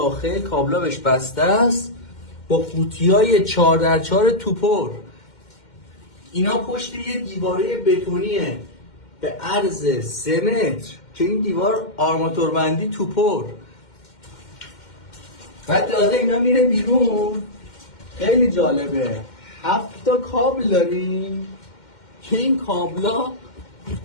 کابلا بهش بسته است با قوطیای 4x4 توپر. اینا پشت یه دیواره بتونیه به عرض 3 متر که این دیوار آرماتوربندی توپر. بعد تازه اینا میره بیرون. خیلی جالبه، 7 تا کابل داریم که این کابلا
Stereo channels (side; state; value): right; late; 2.1 ms